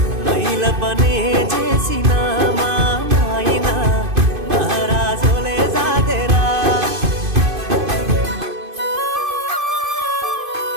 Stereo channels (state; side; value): late; left; 2.5 ms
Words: మైల పనే చేసిన మా నాయన మహారాజోలే సాదెరా